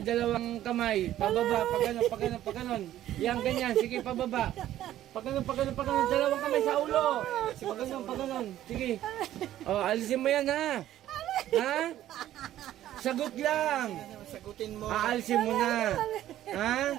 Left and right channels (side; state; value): left; quieter; 12.9 dB